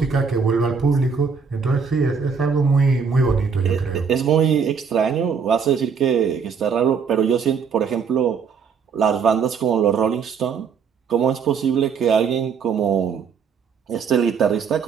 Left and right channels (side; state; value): left; quieter; 6.1 dB